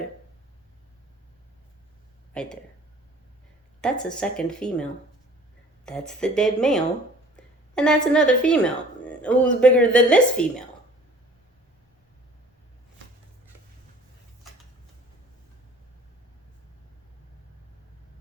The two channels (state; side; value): normal; both; correlation 0.50